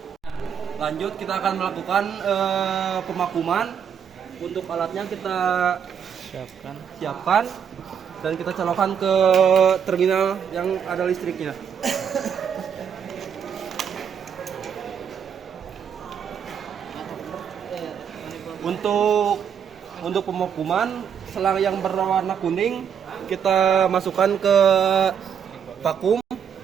Lanjut, kita akan melakukan pemakuman. Untuk alatnya kita siapkan dan kita colokkan ke terminal yang ada listriknya. Untuk pemakuman, selang yang berwarna kuning kita masukkan ke vakum.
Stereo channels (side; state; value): left; quieter; 7.8 dB